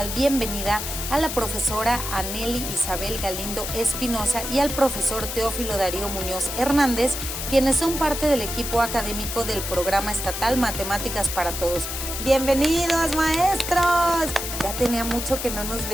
bienvenida a la profesora Anely Isabel Galindo Espinosa y al profesor Teófilo Darío Muñoz Hernández, quienes son parte del equipo académico del Programa Estatal Matemáticas para Todos. ¡Bienvenidos, maestros! Ya tenía mucho que no nos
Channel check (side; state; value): left; noise; hiss, 5 dB below the sound